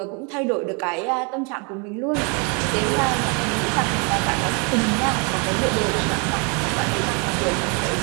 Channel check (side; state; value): left; quieter; 34.2 dB